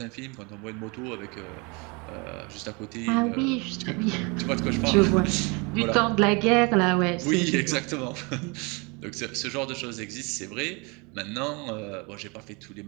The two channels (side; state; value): left; quieter; 29.4 dB